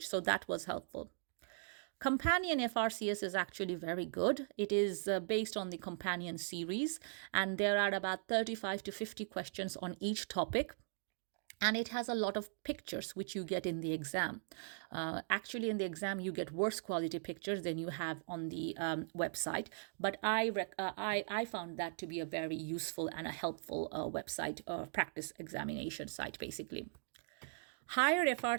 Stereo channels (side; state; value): left; silent; digital silence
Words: So that was helpful. Companion FRCS is actually very good. It is based on the Companion series, and there are about 35 to 50 questions on each topic. And it has a lot of pictures, which you get in the exam. Actually, in the exam, you get worse quality pictures than you have on the website. But I found that to be a very useful and a helpful website, practice examination site, basically. Higher